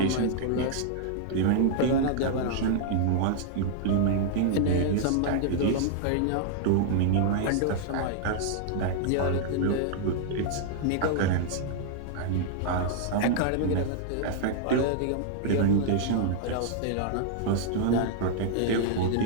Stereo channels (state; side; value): different; both; correlation -0.01